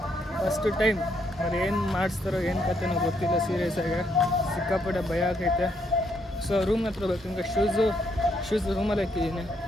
ಫಸ್ಟ್ ಟೈಮ್. ಅವ್ರು ಏನು ಮಾಡಿಸ್ತಾರೋ ಏನು ಕತೆನೋ ಗೊತ್ತಿಲ್ಲ. ಸೀರಿಯಸ್ಸಾಗಿ ಸಿಕ್ಕಾಪಟ್ಟೆ ಭಯ ಆಗೈತೆ. ಸೊ ರೂಮ್ ಹತ್ರ ಬೇಕು. ಹಿಂಗೆ ಶೂಸ್ ರೂಮಲ್ಲಿ ಹಾಕಿದ್ದೀನಿ.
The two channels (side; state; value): both; normal; correlation 0.74